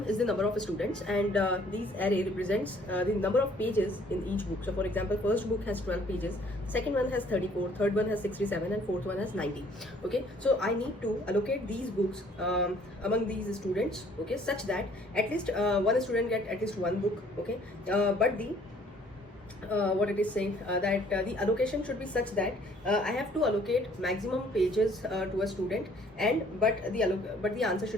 is the number of students and these array represents the number of pages in each book. So for example, first book has 12 pages, second one has 34, third one has 67 and fourth one has 90. Okay, so I need to allocate these books among these students, okay, such that at least one student get at least one book. Okay, but the what it is saying that the allocation should be such that I have to allocate maximum pages to a student, and but the answer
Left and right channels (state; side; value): normal; both; correlation 0.59